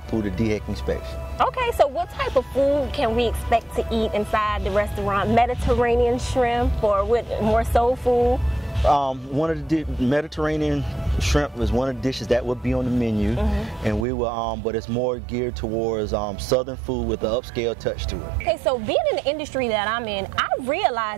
the DHEC inspection. Okay, so what type of food can we expect to eat inside the restaurant? Mediterranean shrimp, or what, more soul food? One of the Mediterranean shrimp is one of the dishes that will be on the menu, and we will, but it's more geared towards southern food with an upscale touch to it. Okay, so being in the industry that I'm in, I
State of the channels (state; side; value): drops out; left; at 14.1 s